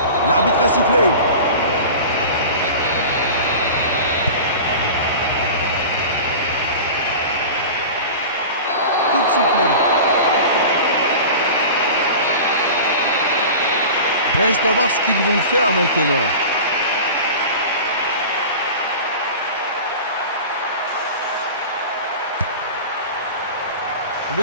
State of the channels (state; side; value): inverted; both; correlation -0.34